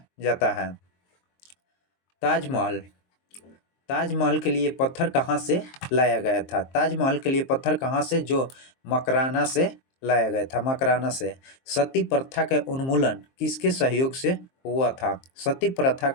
जाता है। ताजमहल के लिए पत्थर कहाँ से लाया गया था? ताजमहल के लिए पत्थर कहाँ से? जो मकराना से लाया गया था, मकराना से। सती प्रथा का उन्मूलन किसके सहयोग से हुआ था? सती प्रथा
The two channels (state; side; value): late; right; 23 ms